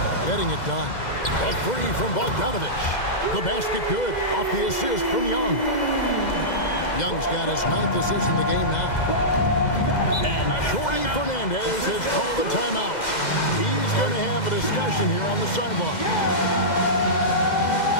getting it done. A 3 from Bogdanovich. The basket good off the assist from Young. Young's got his 9th assist in the game now. And Jordy Fernandez has called a timeout. He's going to have a discussion here on the sideline.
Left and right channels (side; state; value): right; late; 2.0 ms